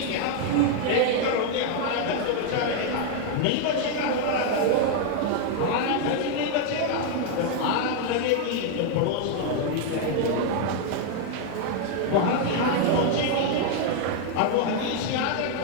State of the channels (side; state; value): both; different; correlation 0.00